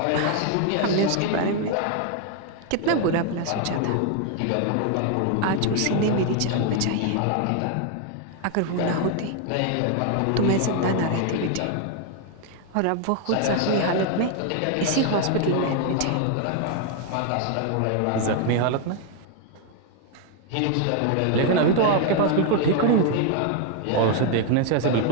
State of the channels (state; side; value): different; both; correlation 0.00